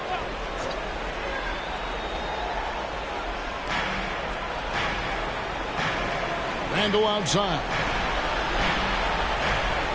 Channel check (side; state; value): both; identical; correlation 1.00